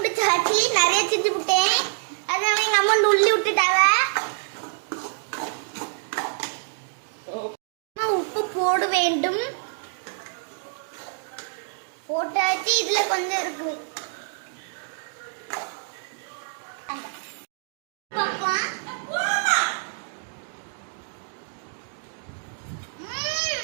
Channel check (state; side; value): silent; left; digital silence